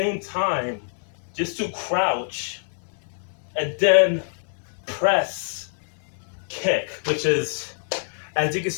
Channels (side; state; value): right; silent; 62 dB below the other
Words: time just to crouch and then press kick, which is, as you can